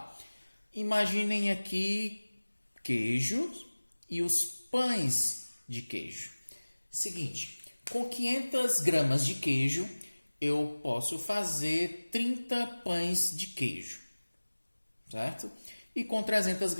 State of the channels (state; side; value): inverted; both; correlation -1.00